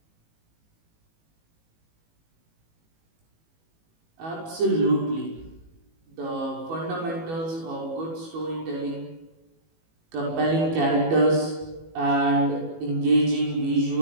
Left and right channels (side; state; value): left; late; 18 ms